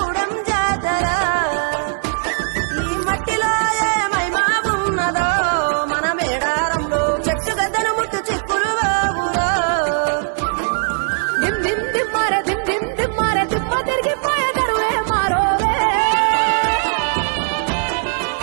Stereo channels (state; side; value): silent; left; 63 dB below the other